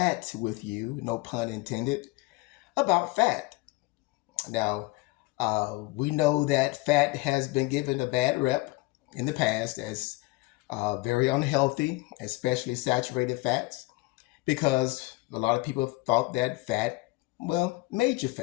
with you, no pun intended, about fat. Now, we know that fat has been given a bad rep in the past as very unhealthy, especially saturated fats, because a lot of people thought that fat, well, made you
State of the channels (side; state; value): right; quieter; 22.1 dB